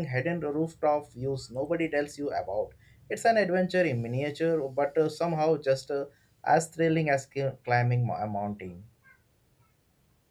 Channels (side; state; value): both; identical; correlation 1.00